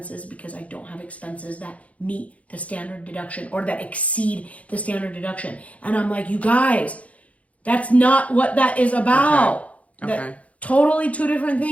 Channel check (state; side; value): late; right; 0.066 ms